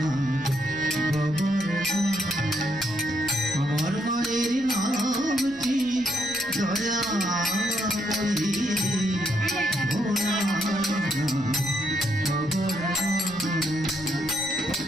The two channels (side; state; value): left; noise; rumble, 24 dB below the sound